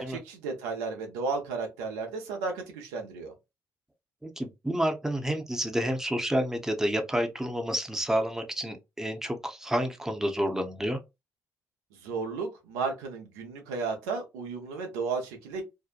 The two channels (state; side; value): normal; both; correlation 0.75